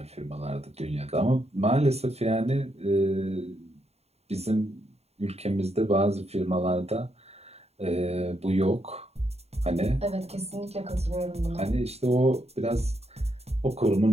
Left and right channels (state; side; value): late; left; 0.30 ms